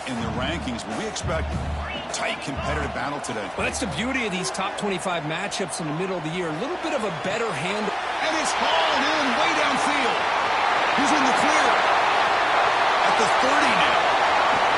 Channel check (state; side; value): identical; both; correlation 1.00